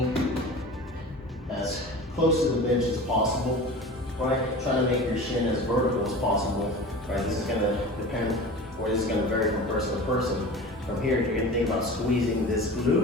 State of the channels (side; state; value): both; normal; correlation 0.35